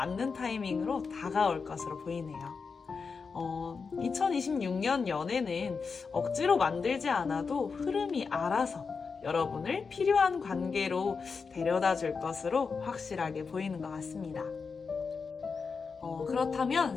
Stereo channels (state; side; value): quieter; right; 5.1 dB